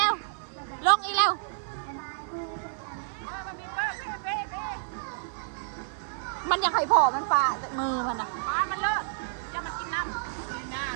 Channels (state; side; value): silent; left; 58 dB below the other